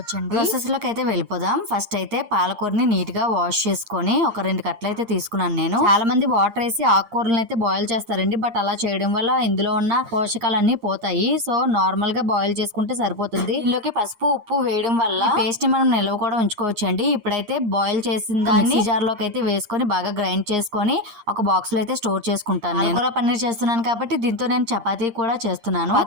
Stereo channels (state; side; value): late; left; 8.7 ms